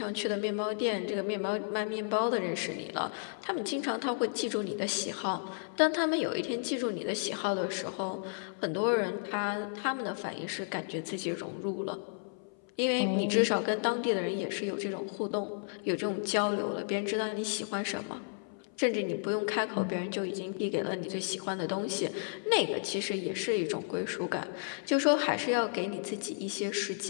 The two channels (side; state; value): right; silent; 56 dB below the other